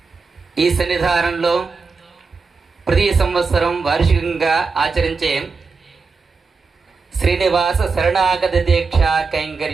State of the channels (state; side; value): quieter; left; 4.6 dB